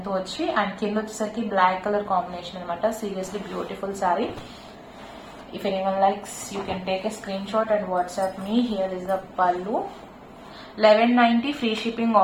తో వచ్చి, అండ్ కింద వచ్చేసరికి బ్లాక్ కలర్ కాంబినేషన్ అనమాట. Seriously beautiful sari. If anyone likes, you can take a screenshot and WhatsApp me. Here is the pallu. 1190 free shipping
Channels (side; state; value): both; identical; correlation 1.00